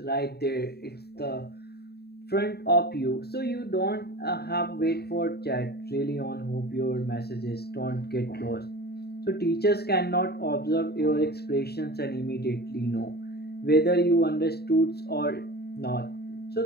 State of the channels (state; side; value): late; right; 0.47 ms